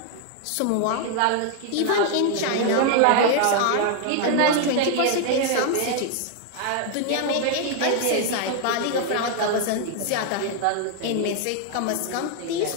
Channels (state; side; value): different; both; correlation 0.00